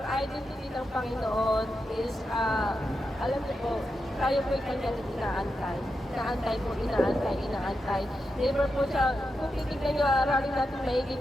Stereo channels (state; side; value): normal; both; correlation 0.87